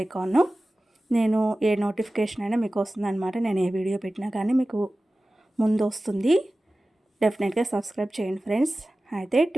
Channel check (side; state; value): both; normal; correlation 0.96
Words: ఐకాన్, నేను ఏ నోటిఫికేషన్ అయినా మీకు వస్తుంది అనమాట. నేను ఏ వీడియో పెట్టినా కానీ మీకు ముందు వస్తుంది. డెఫినెట్గా సబ్స్క్రైబ్ చేయండి ఫ్రెండ్స్. అయితే